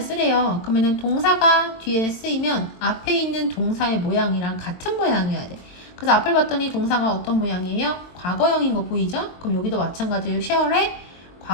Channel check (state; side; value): late; right; 22 ms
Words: 쓰래요. 그러면은 동사가 뒤에 쓰이면 앞에 있는 동사의 모양이랑 같은 모양이어야 돼. 그래서 앞을 봤더니 동사가 어떤 모양이에요? 과거형인 거 보이죠? 그럼 여기도 마찬가지로 share의